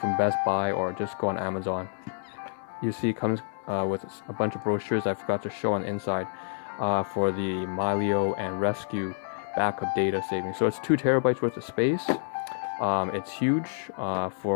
from Best Buy or just go on Amazon. You see it comes with a bunch of brochures I forgot to show on the inside for the Milio and Rescue backup data saving. So it's 2 terabytes worth of space. It's huge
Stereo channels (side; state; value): right; silent; digital silence